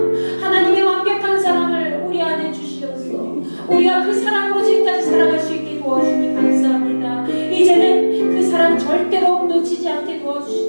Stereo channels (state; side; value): inverted; both; correlation -1.00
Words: 하나님의 완벽한 사랑을 우리 안에 주시옵소서. 우리가 그 사랑으로 지금까지 살아갈 수 있게 도와주니 감사합니다. 이제는 그 사랑 절대로 놓치지 않게